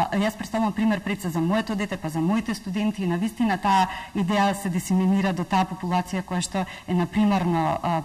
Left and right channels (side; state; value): both; identical; correlation 1.00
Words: јас представувам пример пред се за моето дете, па за моите студенти, и навистина таа идеја се дисеминира до таа популација која што е на